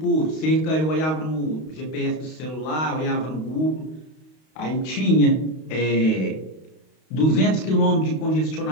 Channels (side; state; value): right; late; 32 ms